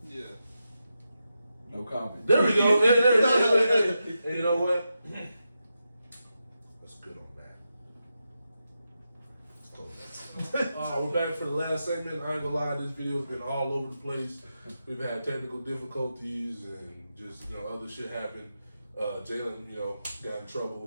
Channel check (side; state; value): both; inverted; correlation -0.88